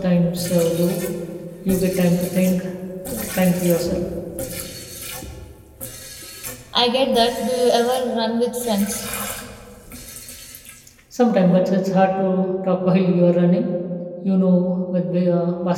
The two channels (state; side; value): identical; both; correlation 1.00